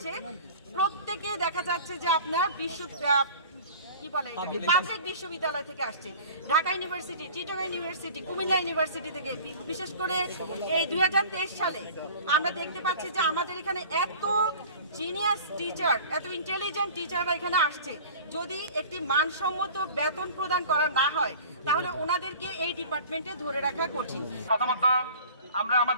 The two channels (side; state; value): both; inverted; correlation -0.42